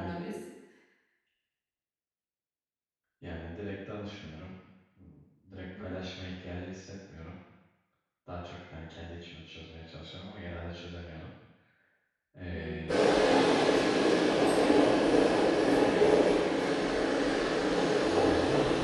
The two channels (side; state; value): both; identical; correlation 1.00